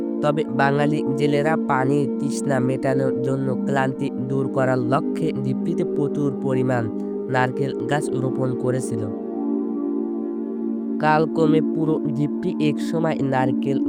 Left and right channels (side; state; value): both; identical; correlation 1.00